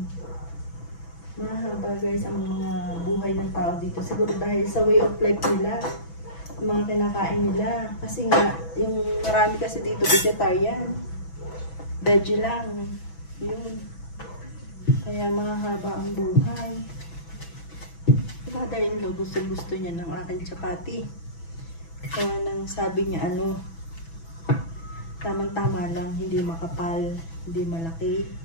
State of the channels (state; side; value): late; right; 6.1 ms